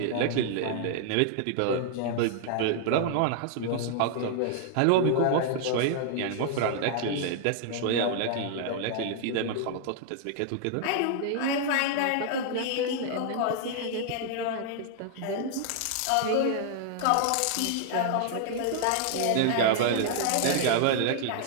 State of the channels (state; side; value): different; both; correlation -0.01